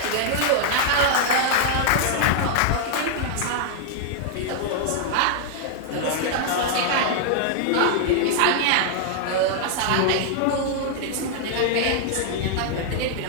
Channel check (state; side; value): different; both; correlation -0.01